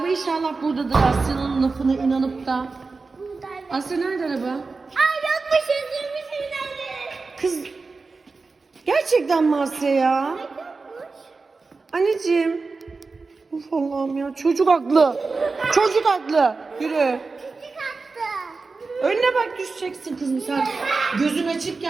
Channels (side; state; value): left; quieter; 4.1 dB